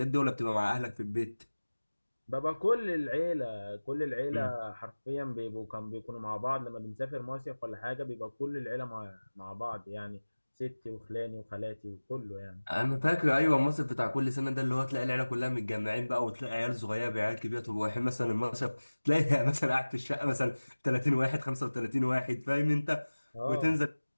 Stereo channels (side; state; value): both; inverted; correlation -1.00